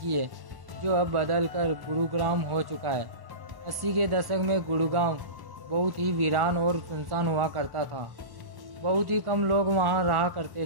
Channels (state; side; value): late; left; 1.1 ms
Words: है जो अब बदल कर गुरुग्राम हो चुका है। 80 के दशक में गुड़गांव बहुत ही वीरान और सुनसान हुआ करता था। बहुत ही कम लोग वहाँ रहा